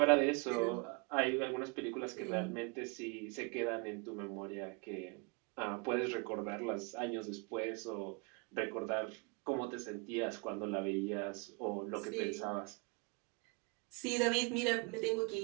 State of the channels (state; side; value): quieter; left; 31.2 dB